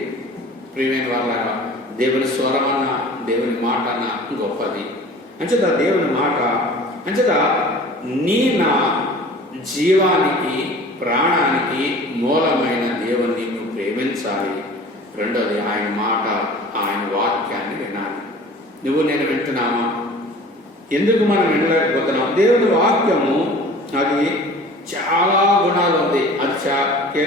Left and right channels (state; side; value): normal; both; correlation 0.44